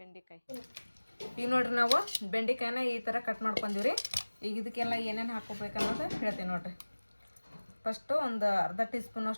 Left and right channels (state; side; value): inverted; both; correlation -1.00